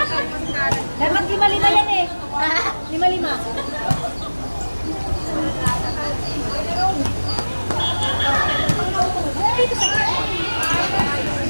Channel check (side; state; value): both; inverted; correlation -1.00